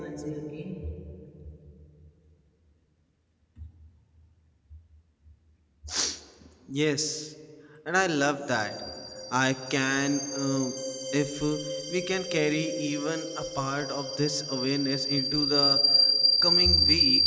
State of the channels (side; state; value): both; identical; correlation 1.00